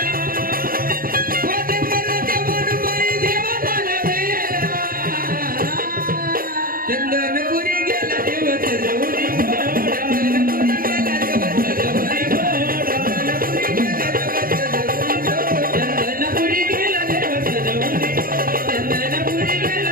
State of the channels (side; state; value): left; late; 0.42 ms